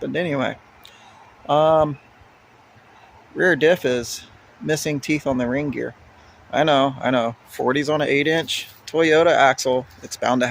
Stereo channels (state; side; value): identical; both; correlation 1.00